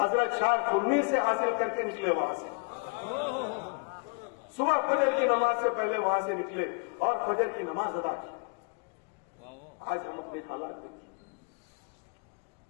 حضرت شاہ خنیر سے حاصل کر کے نکلے وہاں سے. صبح فجر کی نماز سے پہلے وہاں سے نکلے اور فجر کی نماز ادا کی. آج ہم اپنے حالات دیکھیں,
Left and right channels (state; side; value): quieter; right; 34.1 dB